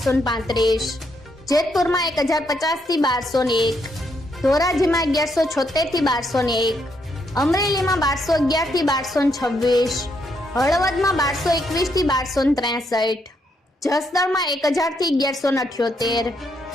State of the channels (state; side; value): normal; both; correlation 0.76